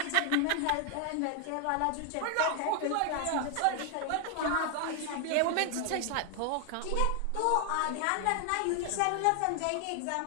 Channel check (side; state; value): both; different; correlation 0.00